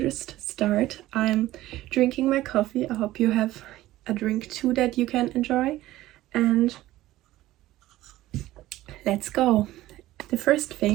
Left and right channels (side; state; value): left; quieter; 15.9 dB